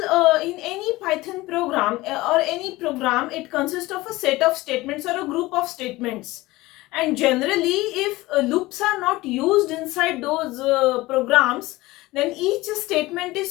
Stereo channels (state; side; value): quieter; right; 19.5 dB